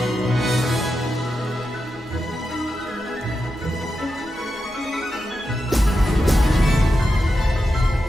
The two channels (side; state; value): both; normal; correlation 0.88